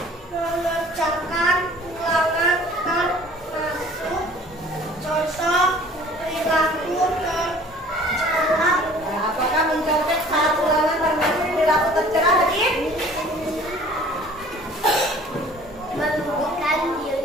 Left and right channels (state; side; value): normal; both; correlation 0.50